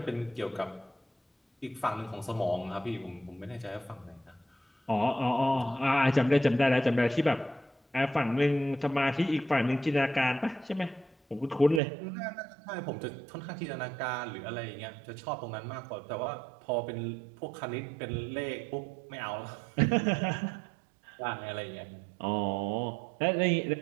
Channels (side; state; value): left; drops out; at 11.8 s